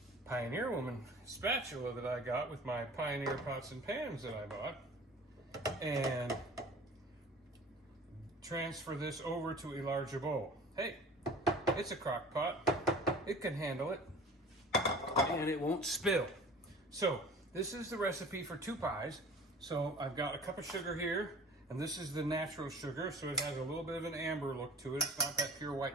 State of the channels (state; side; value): normal; both; correlation 0.43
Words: Pioneer Woman spatula that I got with my Pioneer pots and pans that I bought and transfer this over to a larger bowl. Hey, it's a crock pot. It can handle it and it won't spill. So this is the recipe for 2 pies. So I've got a cup of sugar here, and this is the natural sugar, so it has a little bit of an amber look to it. It's not that pure